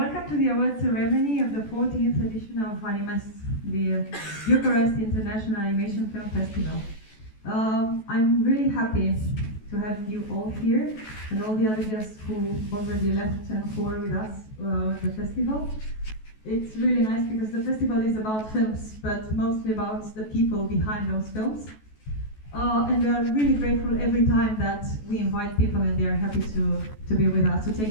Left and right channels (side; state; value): right; late; 14 ms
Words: to the award ceremony of the 14th edition of Animest, the Bucharest International Animation Film Festival. I'm really happy to have you all here and all the other guests who already left and who are with us at the festival. It's really nice because the festival is about films, but mostly about the people behind those films. And we are really grateful every time that we invite people and they are happy to be with us, to